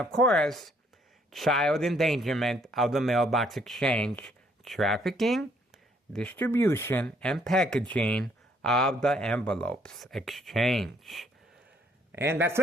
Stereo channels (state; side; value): normal; both; correlation 0.66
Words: course, child endangerment of the mailbox exchange, trafficking, distribution, and packaging of the envelopes exchange. And that's